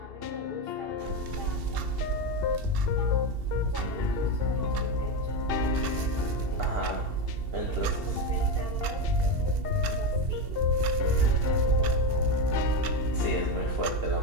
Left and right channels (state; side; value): late; left; 2.7 ms